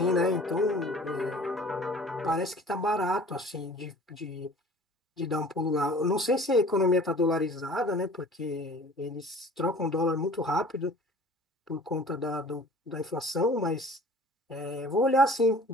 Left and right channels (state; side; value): normal; both; correlation 0.47